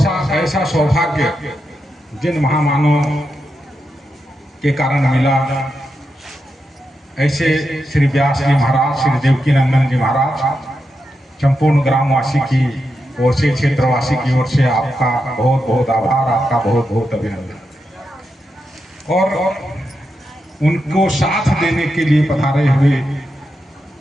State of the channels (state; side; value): normal; both; correlation 0.86